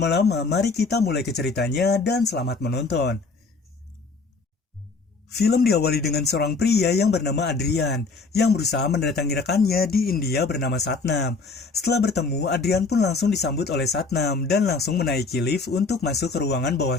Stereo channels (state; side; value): quieter; right; 4.2 dB